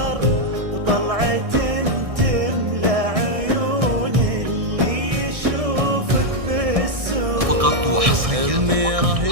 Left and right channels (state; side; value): late; left; 1.6 ms